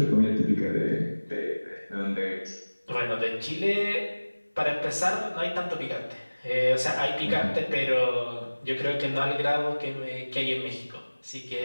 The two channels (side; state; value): both; inverted; correlation -1.00